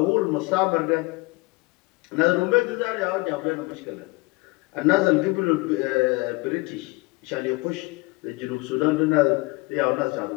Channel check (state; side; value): quieter; right; 25.0 dB